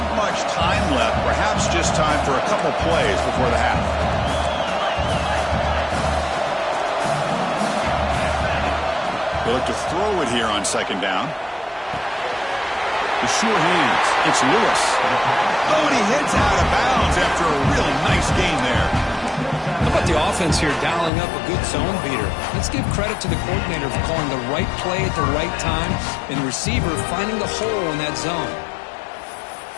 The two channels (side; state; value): right; drops out; at 21.1 s